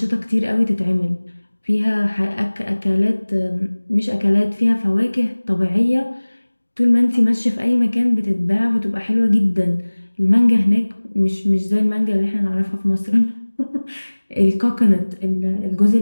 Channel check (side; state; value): both; inverted; correlation -1.00